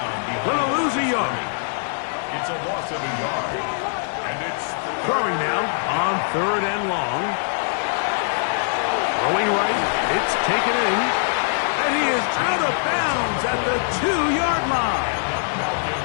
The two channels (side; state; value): right; silent; 64 dB below the other